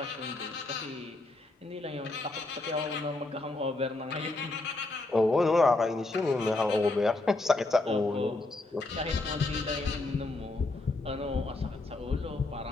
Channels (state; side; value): quieter; right; 3.0 dB